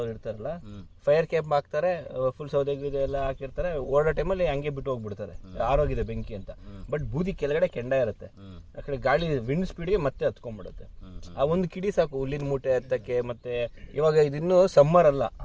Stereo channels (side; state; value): both; identical; correlation 1.00